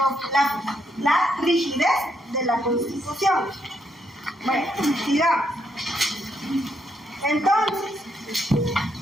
la rigidez de la Constitución. Bueno, sigamos. Entonces,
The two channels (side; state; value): both; normal; correlation 0.76